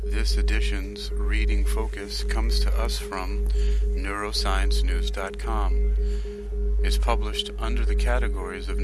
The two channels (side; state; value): both; identical; correlation 1.00